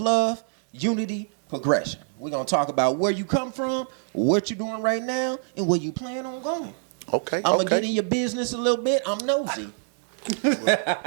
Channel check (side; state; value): left; silent; 61 dB below the other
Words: unity, progression. We're going to talk about where you come from, what you're doing right now, and where you plan on going. Okay. I'm going to get in your business a little bit. I'm nosy.